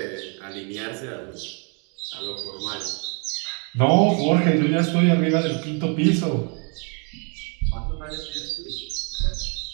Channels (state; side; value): quieter; left; 35.5 dB